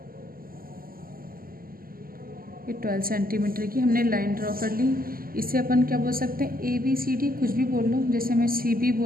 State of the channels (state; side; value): late; left; 0.42 ms